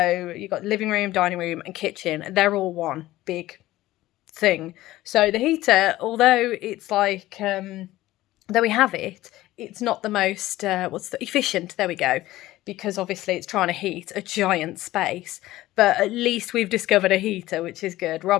you've got living room, dining room and kitchen. They're all one big thing. So the heater, although it's like, though we have it, it's not the most, efficient, there we go. Because obviously it's trying to heat a giant space, but at least we've discovered a heater, which is good.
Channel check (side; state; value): right; quieter; 16.3 dB